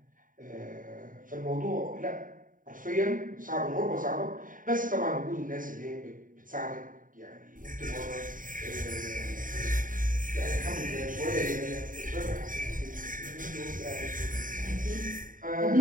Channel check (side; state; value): left; late; 0.39 ms